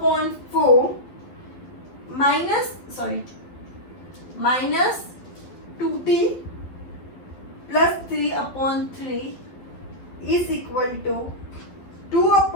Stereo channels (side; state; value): right; late; 12 ms